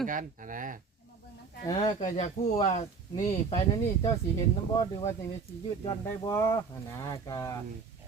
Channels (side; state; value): left; quieter; 5.0 dB